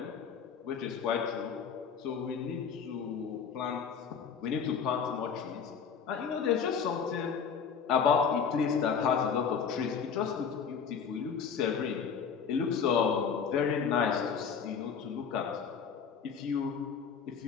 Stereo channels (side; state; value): right; quieter; 6.5 dB